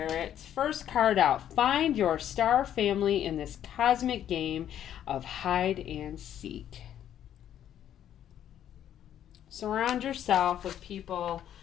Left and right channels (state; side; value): quieter; right; 10.5 dB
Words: First card out. Find your star family in this cosmic game of hide and seek. Surround yourself with people